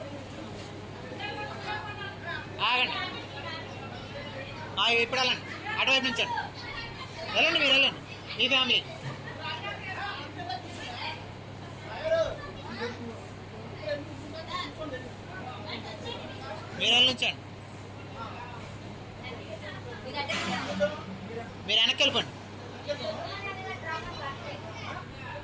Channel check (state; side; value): identical; both; correlation 1.00